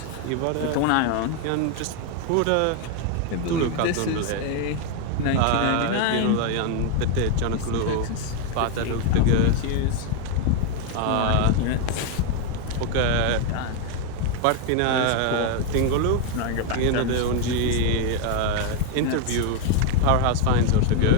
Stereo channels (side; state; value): both; different; correlation 0.01